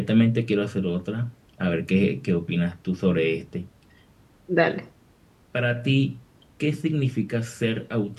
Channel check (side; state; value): both; identical; correlation 1.00